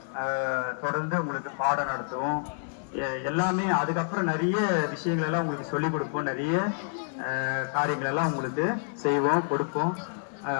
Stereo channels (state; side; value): silent; right; 59 dB below the other